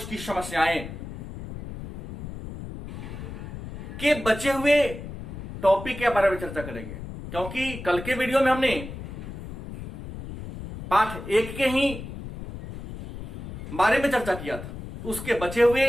समस्याएं के बचे हुए टॉपिक के बारे में चर्चा करेंगे, क्योंकि कल के वीडियो में हमने पाठ 1 के ही बारे में चर्चा किया था। उसके बचे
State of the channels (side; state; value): left; noise; rumble, 10 dB below the sound